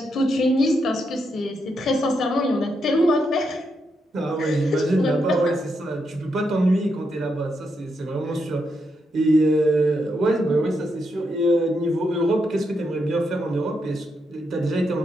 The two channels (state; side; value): normal; both; correlation 0.81